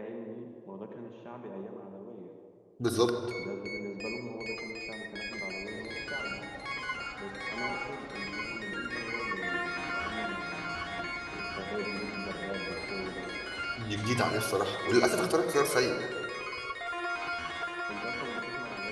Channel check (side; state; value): both; identical; correlation 1.00